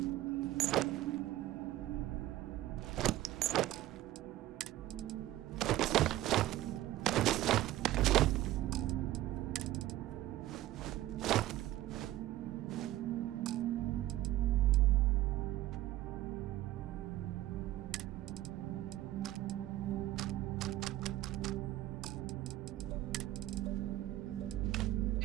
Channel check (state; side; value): quieter; left; 15.0 dB